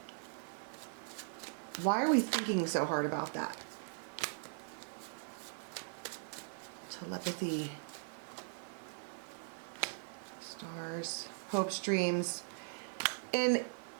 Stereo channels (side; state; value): left; silent; digital silence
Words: why are we thinking so hard about that? Telepathy. Stars. Hopes, dreams. And